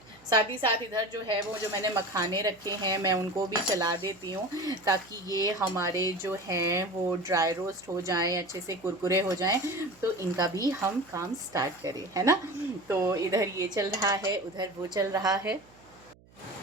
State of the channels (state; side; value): noise; right; hum, 27 dB below the sound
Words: साथ ही साथ इधर जो है वो जो मैंने मखाने रखे हैं मैं उनको भी चला देती हूँ ताकि ये हमारे जो हैं वो ड्राई रोस्ट हो जाएं, अच्छे से कुरकुरे हो जाएं। तो इनका भी हम काम स्टार्ट करें, है ना। तो इधर ये चल रहा है, उधर वो चल रहा है।